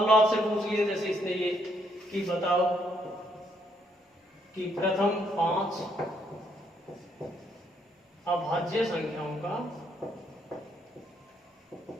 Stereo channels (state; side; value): normal; both; correlation 0.72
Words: लो आपसे पूछ लिए जैसे इसने ये कि बताओ कि प्रथम 5 अभाज्य संख्याओं का